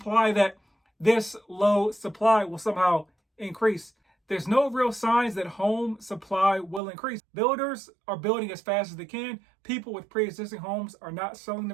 that this low supply will somehow increase. There's no real signs that home supply will increase. Builders are building as fast as they can. People with pre-existing homes are not selling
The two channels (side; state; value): left; drops out; at 6.8 s